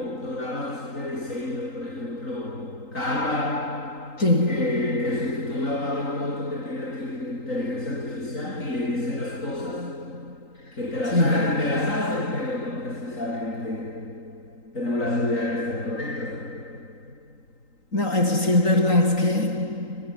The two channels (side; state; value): right; late; 3.8 ms